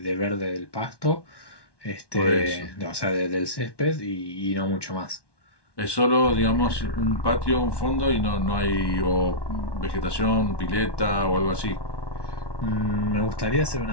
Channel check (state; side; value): late; right; 1.1 ms